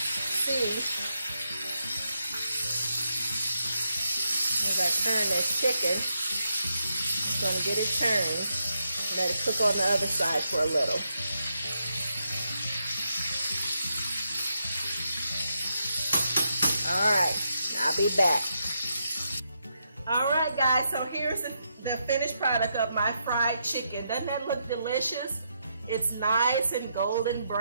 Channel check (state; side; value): inverted; both; correlation -0.82